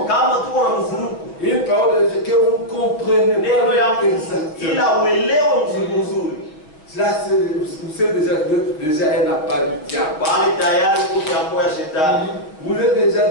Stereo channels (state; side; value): late; right; 6.4 ms